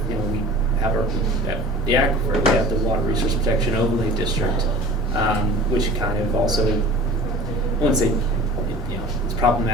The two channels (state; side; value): normal; both; correlation 0.41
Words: you know, we have the aquifer, we have the Water Resource Protection Overlay District, which kind of also, I wouldn't say, you know, it's